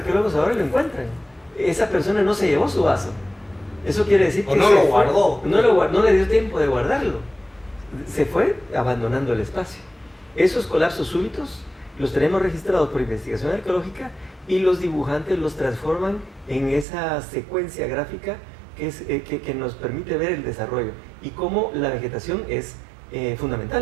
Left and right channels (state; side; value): drops out; left; at 16.9 s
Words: ahora y lo encuentran. Esa persona no se llevó su vaso. Eso quiere decir que no lo guardó. No le dio tiempo de guardarlo. Se fue abandonando el espacio. Esos colapsos súbitos los tenemos registrados por investigación arqueológica, y los dibujantes los transforman en esa secuencia gráfica que nos permite ver el desarrollo y cómo la vegetación es